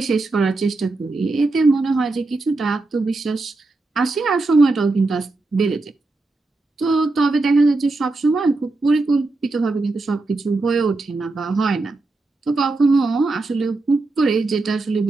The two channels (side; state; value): left; quieter; 3.3 dB